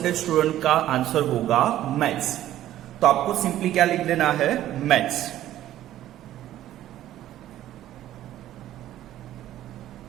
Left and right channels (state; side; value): quieter; left; 13.2 dB